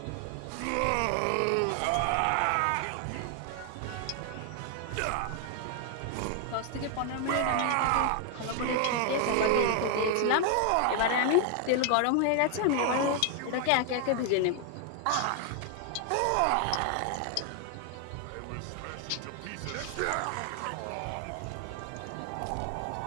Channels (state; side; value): different; both; correlation 0.00